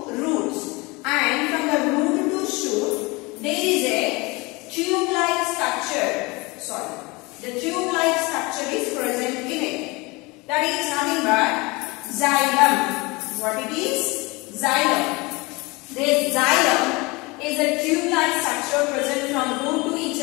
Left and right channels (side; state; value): right; quieter; 25.0 dB